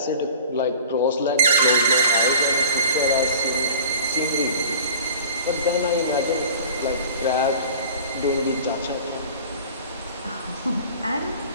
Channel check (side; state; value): both; inverted; correlation -0.41